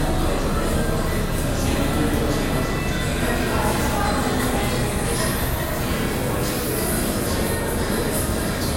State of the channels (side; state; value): both; identical; correlation 1.00